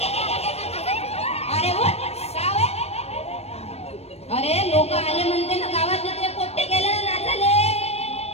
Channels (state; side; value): late; right; 0.30 ms